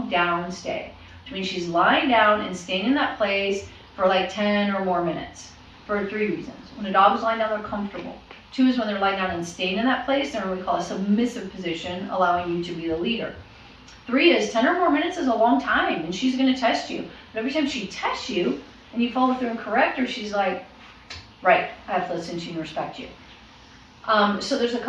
down stay, which means she's lying down and staying in that place for like 10 or more minutes for 3 reasons. When a dog is lying down, they're comfortable. 2 is when they're lying down and staying in that place, they're in what we call a submissive position, allowing you to be the leader. 3 is 10 or more minutes is a long time, and she's going to test you. But every time she tests you and you follow through and correct her, she's like, right, I have to listen to you and respect you. So there's a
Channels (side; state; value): both; identical; correlation 1.00